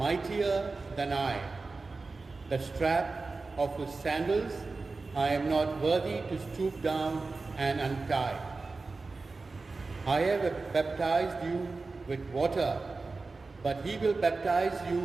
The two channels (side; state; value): left; quieter; 3.8 dB